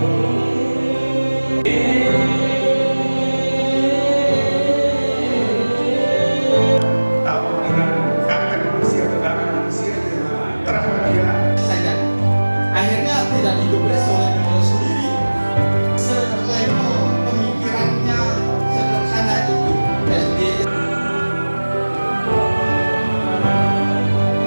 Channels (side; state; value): both; inverted; correlation -1.00